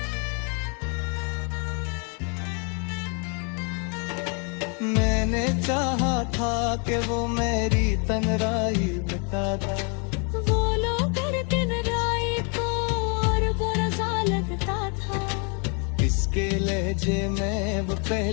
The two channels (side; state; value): right; quieter; 36.9 dB